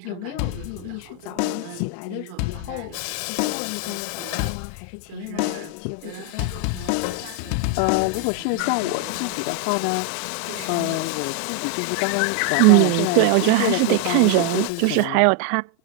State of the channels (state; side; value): different; both; correlation 0.01